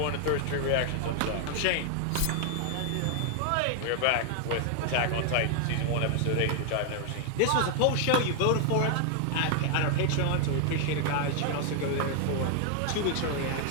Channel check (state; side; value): different; both; correlation 0.00